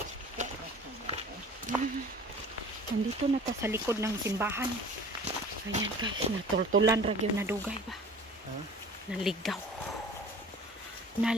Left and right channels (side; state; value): both; normal; correlation 0.44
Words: Nandito na ta sa likod ng simbahan. Ayan guys, natultulan ragyo na dugay ba? Huh? Naligaw.